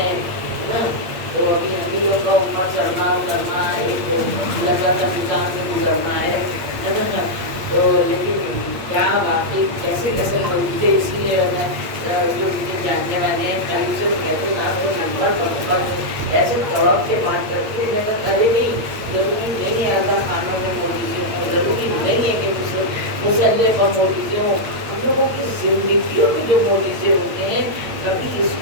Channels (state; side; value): late; left; 8.5 ms